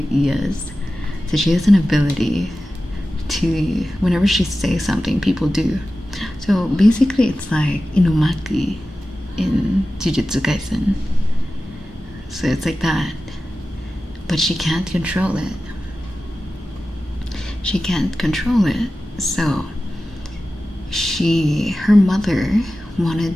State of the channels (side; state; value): both; normal; correlation 0.94